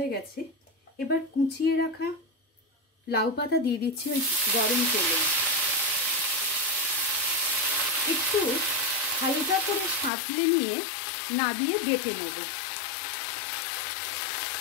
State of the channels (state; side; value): drops out; right; at 10.1 s